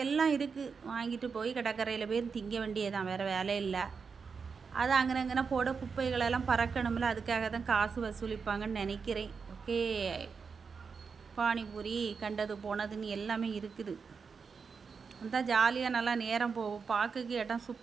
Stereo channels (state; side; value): quieter; left; 5.5 dB